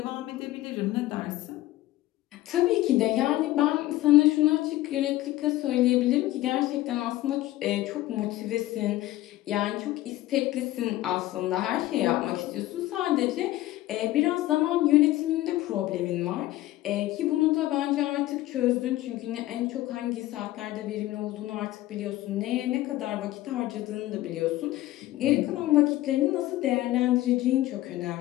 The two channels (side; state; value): right; quieter; 16.1 dB